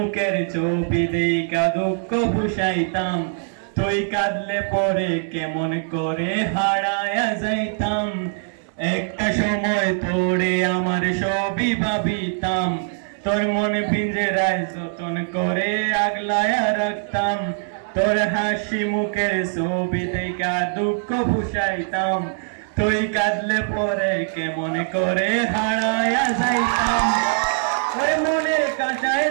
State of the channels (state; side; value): silent; left; 59 dB below the other